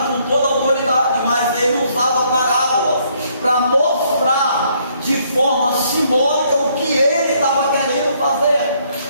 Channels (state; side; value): inverted; both; correlation -0.68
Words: com toda a autoridade, mas Ele usava parábolas para mostrar de forma simbólica o que Ele estava querendo fazer.